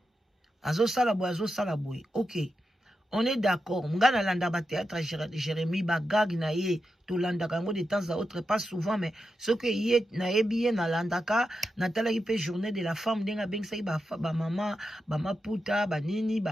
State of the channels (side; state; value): both; normal; correlation 0.88